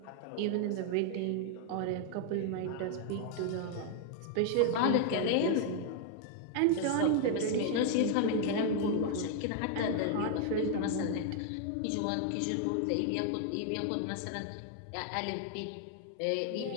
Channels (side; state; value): both; different; correlation 0.00